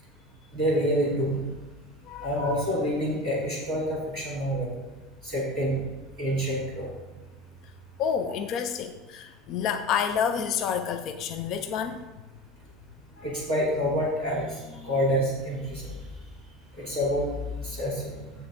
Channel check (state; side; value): normal; both; correlation 0.31